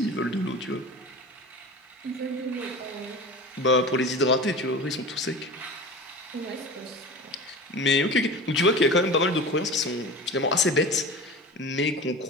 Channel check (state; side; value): normal; both; correlation 0.34